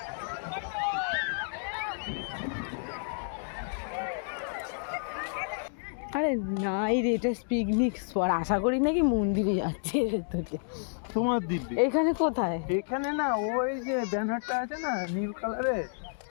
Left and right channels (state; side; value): silent; right; digital silence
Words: আরে নাই রে, এটা পিকনিক স্পট। আশা করি নাকি মন্দিরে যাচ্ছে তোকে। তোমার দিব্যি এখানে কোথায়? এখানে না, ওই যে ব্যানারটা আছে না নীল কালারের,